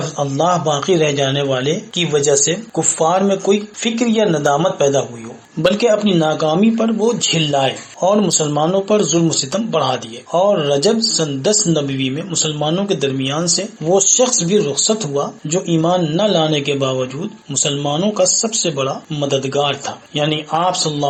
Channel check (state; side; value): identical; both; correlation 1.00